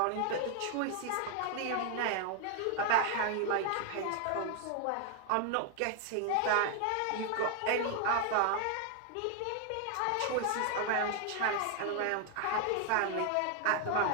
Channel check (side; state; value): both; different; correlation 0.00